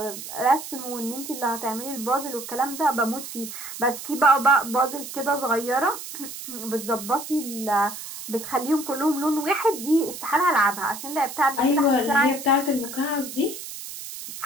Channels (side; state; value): right; noise; hiss, 10 dB below the sound